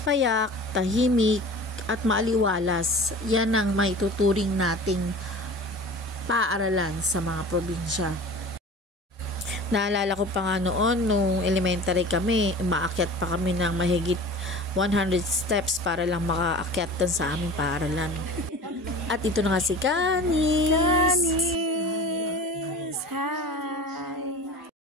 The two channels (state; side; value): normal; both; correlation 0.38